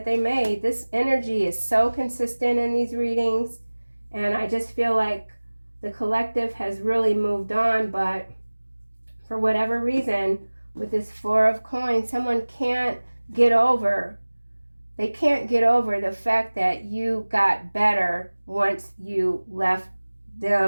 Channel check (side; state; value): both; inverted; correlation -1.00